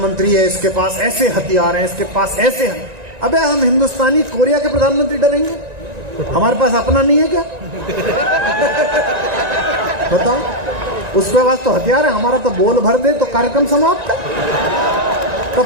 है, इसके पास ऐसे हथियार हैं, इसके पास ऐसे हैं। अबे हम हिंदुस्तानी कोरिया के प्रधानमंत्री डरेंगे? हमारे पास अपना नहीं है क्या? बताओ, उसके पास तो हथियार है, हमारा तो बोल भर दे तो कार्यक्रम समाप्त है। तब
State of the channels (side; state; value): left; late; 1.9 ms